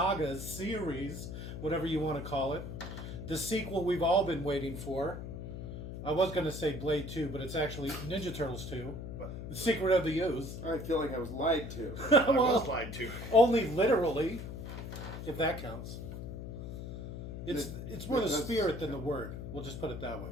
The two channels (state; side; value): noise; left; hum, 8 dB below the sound